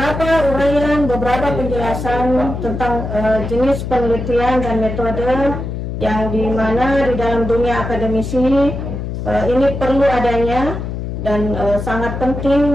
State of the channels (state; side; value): noise; left; hum, 5 dB below the sound